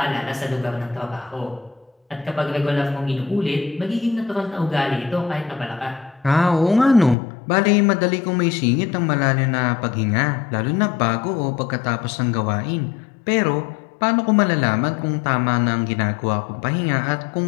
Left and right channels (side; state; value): right; drops out; at 7.2 s